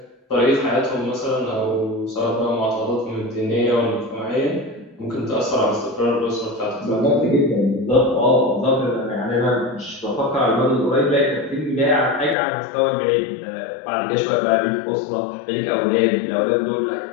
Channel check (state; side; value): drops out; right; at 12.4 s